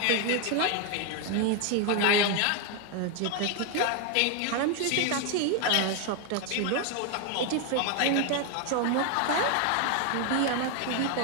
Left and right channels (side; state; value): both; different; correlation 0.01